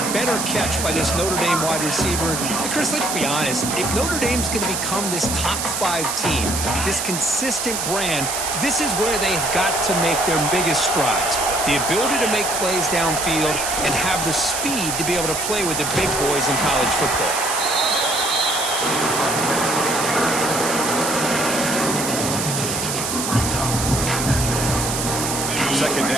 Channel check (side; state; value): right; noise; hiss, 3 dB below the sound